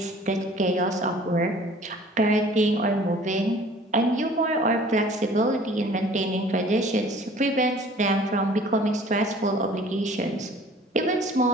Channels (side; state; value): both; normal; correlation 0.50